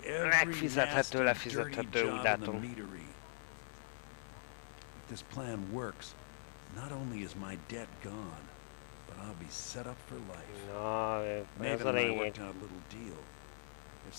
every nasty, dirty job in the meadery. If this plan works, not only is my debt gone, but I'll be set up for life. Maven and I worked out a little deal. If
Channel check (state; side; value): silent; right; digital silence